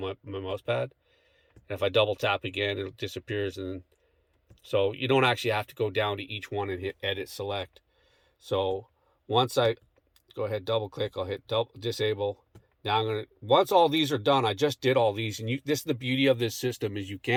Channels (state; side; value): identical; both; correlation 1.00